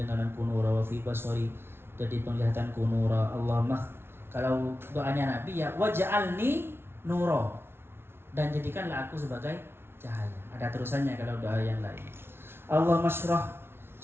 nuran wa fi basari dan di penglihatanku nuran. Allahumma kalau doanya Nabi ya waj'alni nura dan jadikanlah aku sebagai cahaya. Ada terusannya kalau doa yang lain. Allah masyrah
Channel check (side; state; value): left; late; 0.12 ms